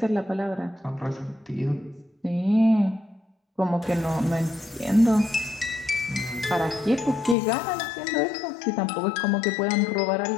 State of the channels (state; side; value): drops out; right; at 7.4 s